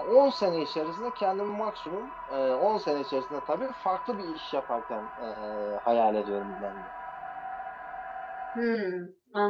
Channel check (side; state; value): both; identical; correlation 1.00